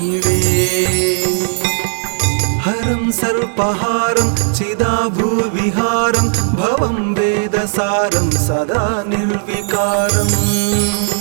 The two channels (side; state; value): left; silent; digital silence